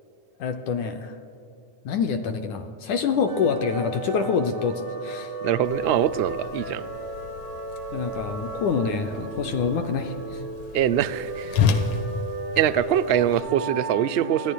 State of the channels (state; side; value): late; right; 9.6 ms